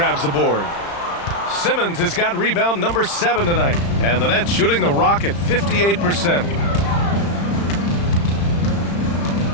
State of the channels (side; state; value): right; late; 35 ms